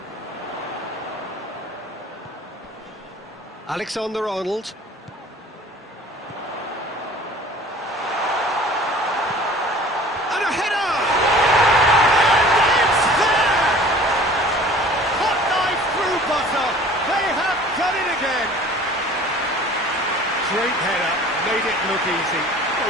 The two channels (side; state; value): both; normal; correlation 0.47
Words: Alexander-Arnold. And a header! And it's there! Hot knife through butter. They have done it again. Great header, made it look easy.